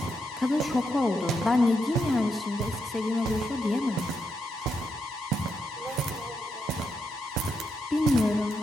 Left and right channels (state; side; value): normal; both; correlation 0.81